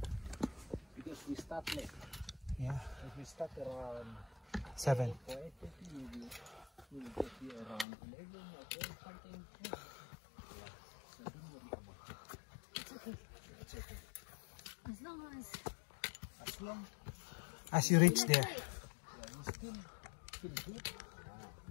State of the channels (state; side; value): drops out; right; at 7.9 s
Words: Because we start late. Yeah. If we start around 7. 8:30, maybe we'll get here around 11 or 12 something. It's okay. As long As you reach there.